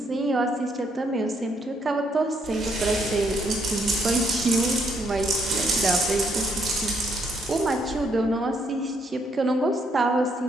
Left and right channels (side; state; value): both; normal; correlation 0.72